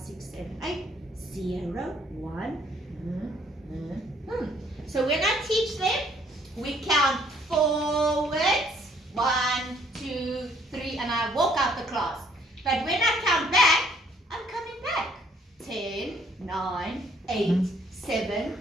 7, 8. 0, 1. So when I teach them, we count forwards. 1, 2, 3, and I walk out the class. But when I count back, I'm coming back. 10, 9, 8, 7,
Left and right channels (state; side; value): normal; both; correlation 0.63